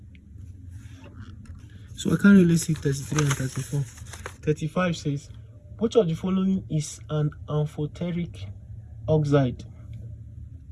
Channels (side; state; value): both; identical; correlation 1.00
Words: So I can't really see 33 and 34. 35 says, which of the following is an amphoteric oxide?